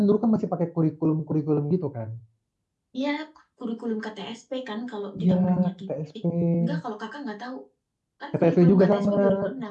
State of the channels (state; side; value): identical; both; correlation 1.00